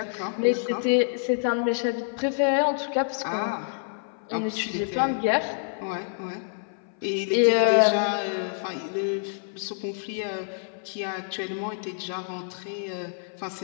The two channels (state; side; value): silent; right; 57 dB below the other